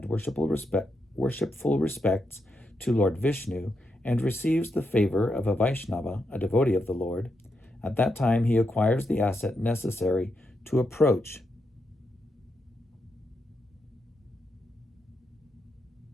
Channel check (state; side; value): normal; both; correlation 0.83